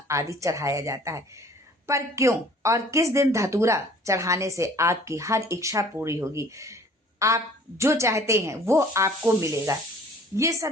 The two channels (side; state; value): both; normal; correlation 0.52